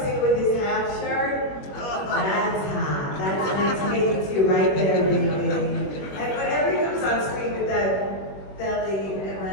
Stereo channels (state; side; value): late; right; 21 ms